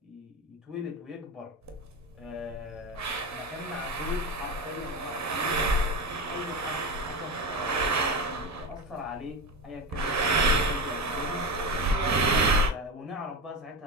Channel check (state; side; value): normal; both; correlation 0.20